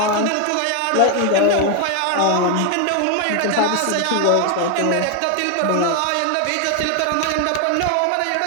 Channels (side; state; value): both; different; correlation 0.01